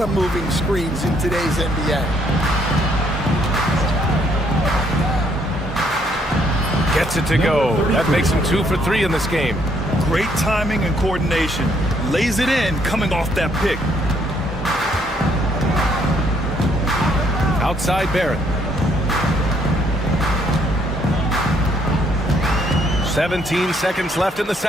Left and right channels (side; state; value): both; normal; correlation 0.68